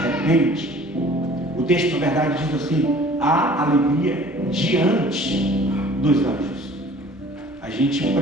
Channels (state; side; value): normal; both; correlation 0.50